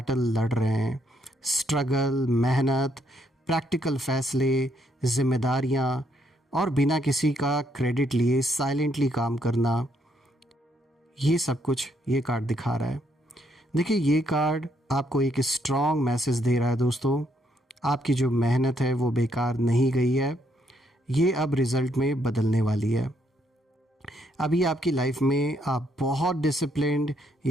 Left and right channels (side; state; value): both; normal; correlation 0.73